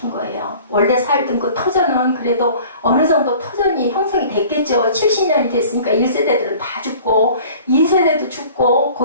거예요. 원래 살던 그 터전은 그래도 어느 정도 터전이 형성이 됐겠죠. 70년이 됐으니까 1세대들은 다 죽고 2세대도 죽고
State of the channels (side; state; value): both; inverted; correlation -0.47